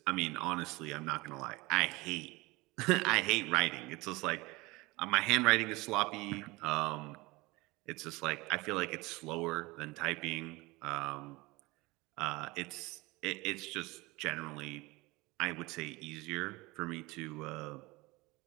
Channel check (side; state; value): left; quieter; 22.5 dB